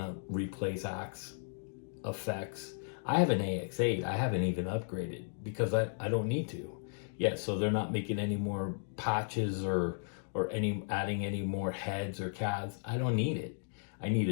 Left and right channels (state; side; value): silent; right; digital silence